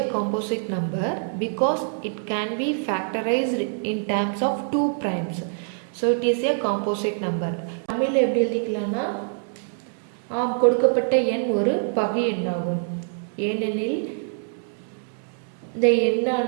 composite number because it can be factorized in terms of 2 primes. So it is a composite number. தமிழில் எப்படி எழுதிக்கலாம்னா, கொடுக்கப்பட்ட எண் ஒரு பகு எண்ணாகும். ஏனெனில் இந்த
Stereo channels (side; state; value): left; silent; digital silence